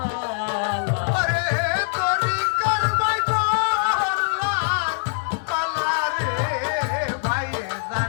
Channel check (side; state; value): right; silent; digital silence